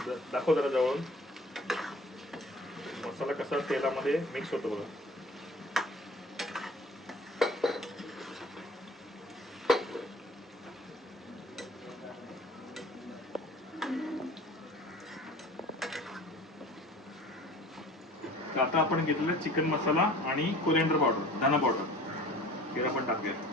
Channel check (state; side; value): normal; both; correlation 0.45